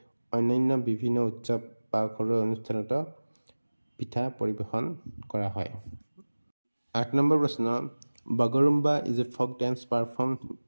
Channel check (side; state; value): both; inverted; correlation -1.00